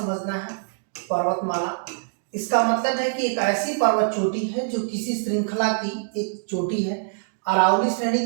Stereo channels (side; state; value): left; silent; digital silence